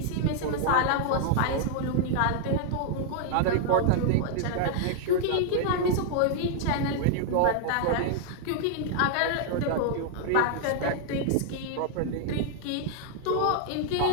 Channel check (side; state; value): both; different; correlation -0.01